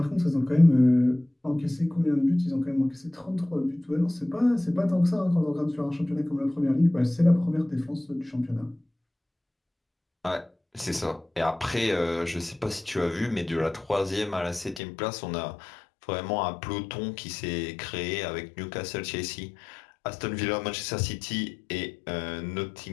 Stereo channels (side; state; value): right; drops out; at 14.8 s